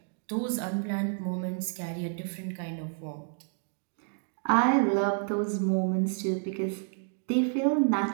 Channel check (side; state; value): left; silent; 58 dB below the other